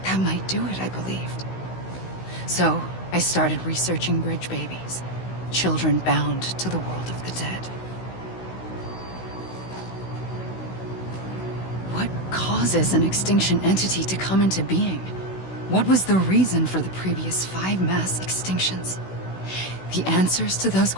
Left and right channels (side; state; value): right; late; 16 ms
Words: That might do it, I believed. So, I started researching bridge babies. Children bound to the world of the dead. What causes an extinction entity to come into being? What was the reason for the previous 5 mass extinctions? The answers to those